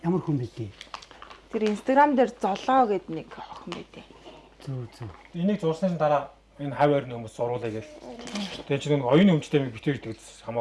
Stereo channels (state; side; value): identical; both; correlation 1.00